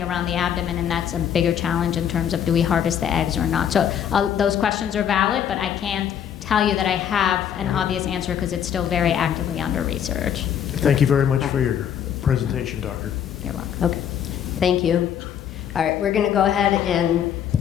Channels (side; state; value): right; quieter; 9.1 dB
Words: around the abdomen, and that's a bigger challenge in terms of do we harvest the eggs or not. So those questions are valid, but I can't tell you that I have an obvious answer because it's still very actively under research. Thank you very much for your presentation, Doctor. You're welcome. Okay, thank you. All right, we're going to go ahead and